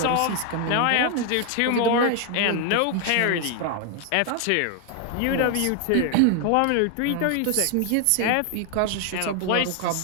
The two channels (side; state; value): both; different; correlation 0.00